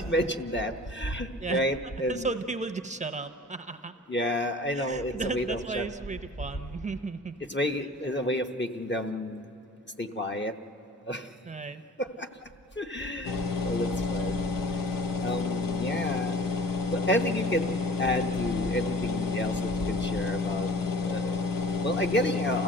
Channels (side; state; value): both; normal; correlation 0.46